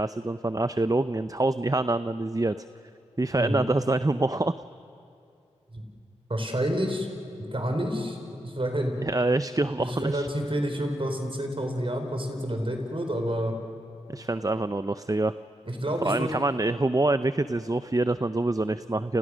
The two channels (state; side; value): normal; both; correlation 0.82